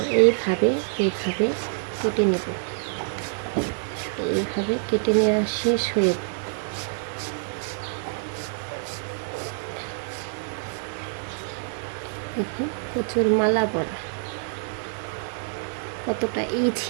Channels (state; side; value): silent; left; digital silence